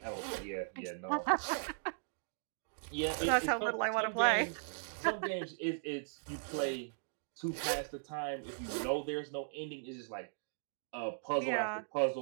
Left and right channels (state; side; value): silent; left; digital silence